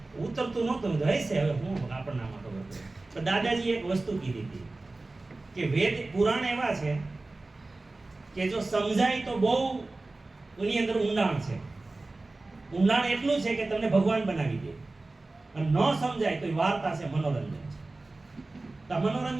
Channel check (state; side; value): quieter; left; 3.2 dB